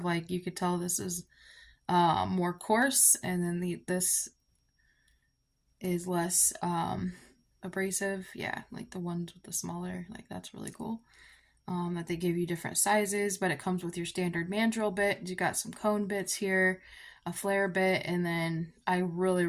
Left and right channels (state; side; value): identical; both; correlation 1.00